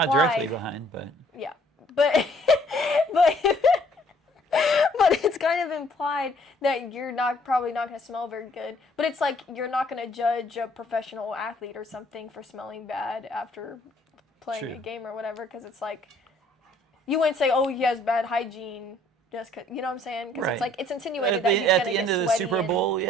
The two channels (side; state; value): both; normal; correlation 0.61